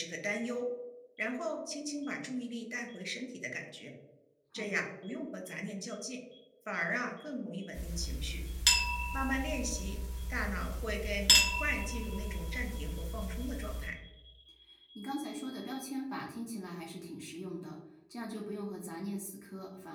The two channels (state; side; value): identical; both; correlation 1.00